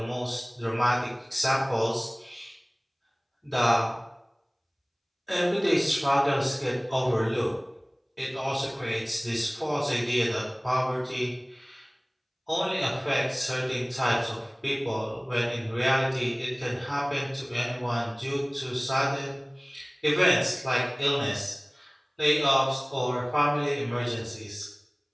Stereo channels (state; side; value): identical; both; correlation 1.00